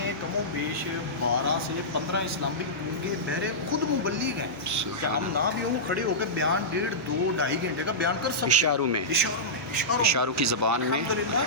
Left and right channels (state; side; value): normal; both; correlation -0.14